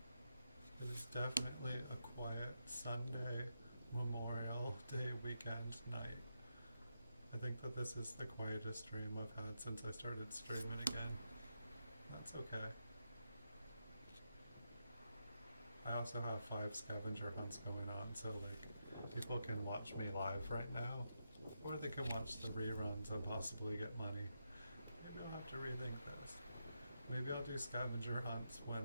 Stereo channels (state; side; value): inverted; both; correlation -0.84